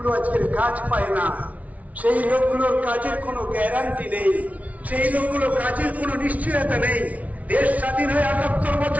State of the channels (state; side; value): late; left; 0.069 ms